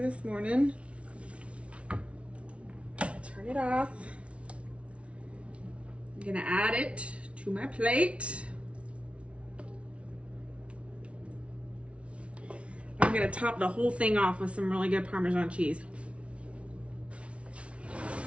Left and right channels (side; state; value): left; late; 0.061 ms